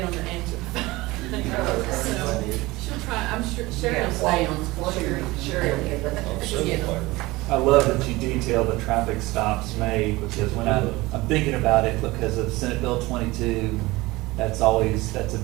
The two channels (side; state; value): left; quieter; 20.7 dB